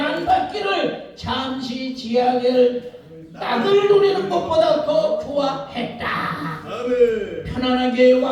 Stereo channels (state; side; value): identical; both; correlation 1.00